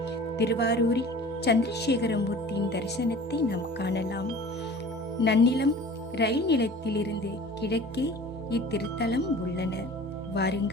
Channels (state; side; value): normal; both; correlation 0.43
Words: திருவாரூரில் சந்திரசேகர மூர்த்தியின் தரிசனத்தை நாம் காணலாம். நன்னிலம் ரயில் நிலையத்திலிருந்து கிழக்கே இத்திருத்தலம் உள்ளன.